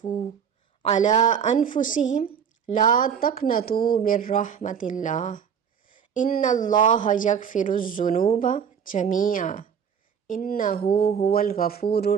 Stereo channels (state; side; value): quieter; left; 7.5 dB